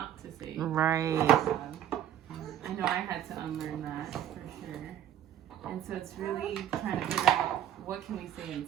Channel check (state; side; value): quieter; left; 10.9 dB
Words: to say right. good job. I know I had to unlearn that for sure. And so it's really trying to figure out what can we say